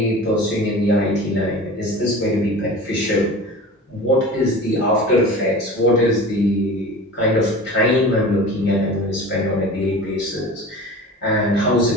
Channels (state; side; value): normal; both; correlation 0.36